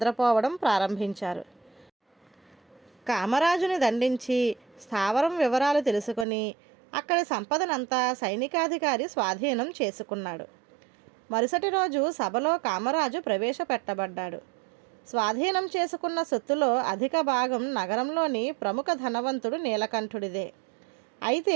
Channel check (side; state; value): left; drops out; at 6.2 s